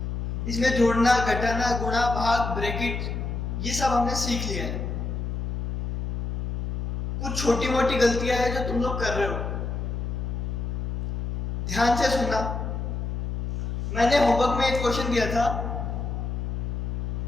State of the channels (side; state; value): left; noise; hum, 2 dB below the sound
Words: इसमें जोड़ना, घटाना, गुणा, भाग, ब्रैकेट ये सब हमने सीख लिया है। कुछ छोटी मोटी गलतियां हैं जो तुम लोग कर रहे हो, ध्यान से सुनना। मैंने होमवर्क में एक क्वेश्चन दिया था,